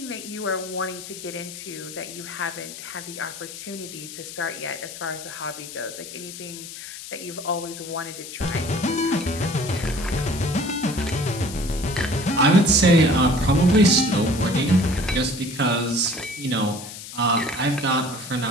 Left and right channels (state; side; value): noise; left; hiss, 12 dB below the sound